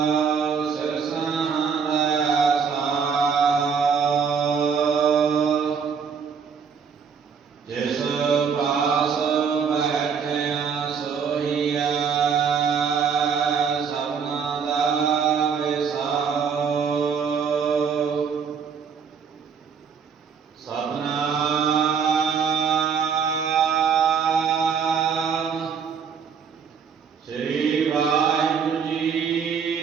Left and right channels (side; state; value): left; quieter; 6.5 dB